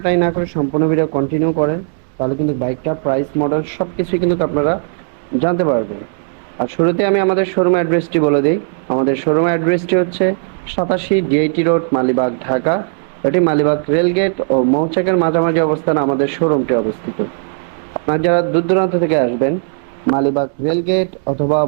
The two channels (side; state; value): left; silent; digital silence